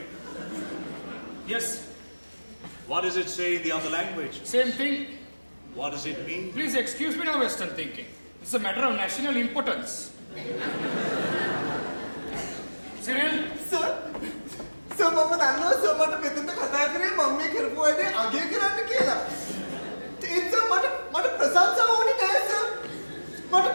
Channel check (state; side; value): inverted; both; correlation -1.00